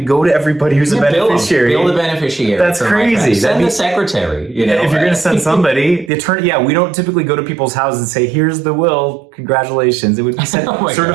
go to everybody who's a beneficiary? Bill the beneficiary. That's crazy. Send the secretary. You know, if you're going to send somebody, the attorney, we don't typically go to people's houses and say, here's the will, congratulations. It would be sent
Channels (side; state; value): left; drops out; at 6.1 s